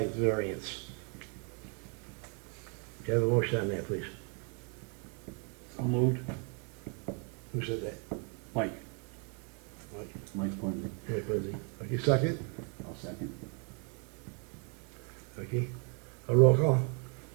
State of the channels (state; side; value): quieter; left; 37.9 dB